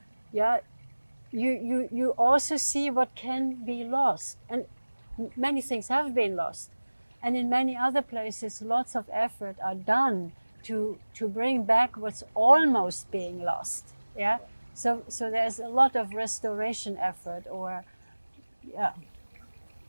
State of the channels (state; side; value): inverted; both; correlation -1.00